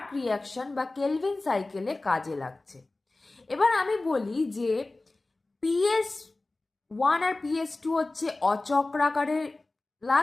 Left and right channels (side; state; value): right; quieter; 3.1 dB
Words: রিয়াকশন বা কেলভিন সাইকেলে কাজে লাগছে। এবার আমি বলি যে PS1 আর PS2 হচ্ছে অচক্রাকারে